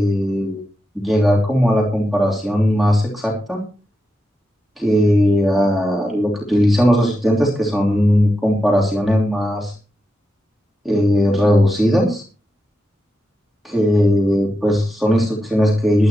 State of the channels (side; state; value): both; normal; correlation 0.88